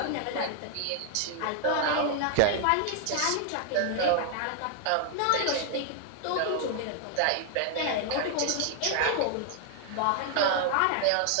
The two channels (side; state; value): both; different; correlation 0.00